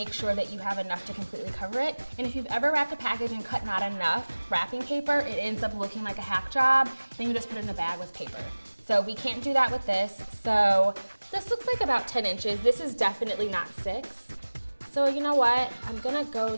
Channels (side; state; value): both; inverted; correlation -1.00